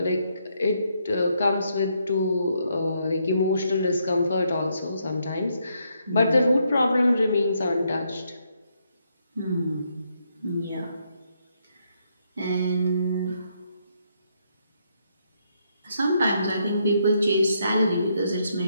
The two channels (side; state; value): both; inverted; correlation -0.76